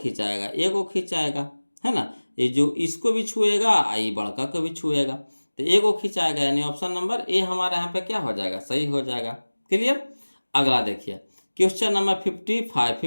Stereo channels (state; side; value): inverted; both; correlation -1.00